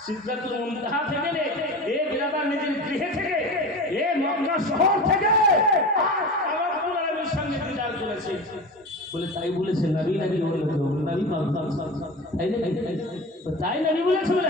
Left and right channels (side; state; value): both; normal; correlation 0.30